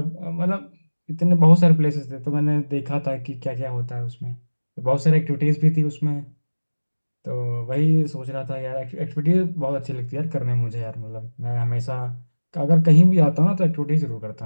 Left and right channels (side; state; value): both; inverted; correlation -1.00